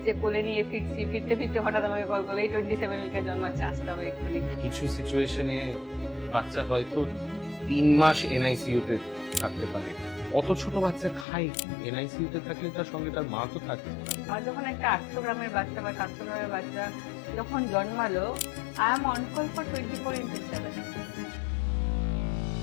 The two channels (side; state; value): right; drops out; at 11.2 s